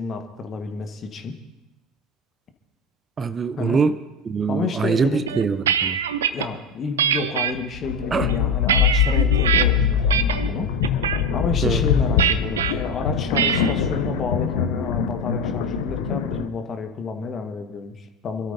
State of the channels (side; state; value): both; normal; correlation 0.18